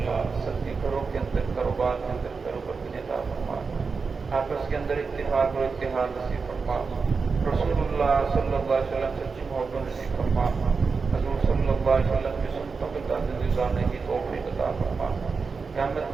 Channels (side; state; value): left; quieter; 4.9 dB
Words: سب کے گھروں کے اندر کاروبار کے اندر کاروبار کی عطا فرما. آپس کے اندر اتفاق اور اتحاد نصیب فرما. رسول اللہ صلی اللہ علیہ وسلم سچی محبت نصیب فرما. حضور صلی اللہ علیہ وسلم کی سنتوں کے تحت گزارنے کی توفیق عطا فرما. قیامت